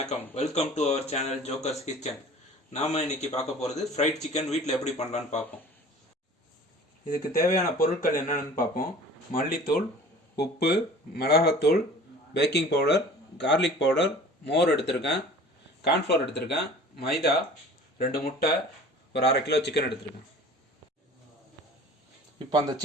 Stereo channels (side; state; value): both; normal; correlation 0.45